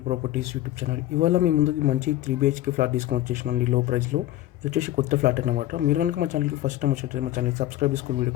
properties YouTube channel. ఇవాళ మీ ముందుకి మంచి 3 BHK ఫ్లాట్ తీసుకొని వచ్చేసినండి లో ప్రైస్లో. ఇది వచ్చేసి కొత్త ఫ్లాట్ అనమాట. మీరు కనుక మా ఛానల్కి ఫస్ట్ టైం వచ్చేటప్పుడు మా ఛానల్ సబ్స్క్రైబ్ చేసుకుని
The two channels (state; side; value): quieter; right; 14.5 dB